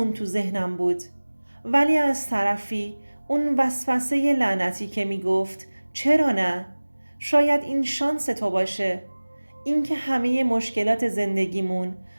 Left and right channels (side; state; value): both; inverted; correlation -1.00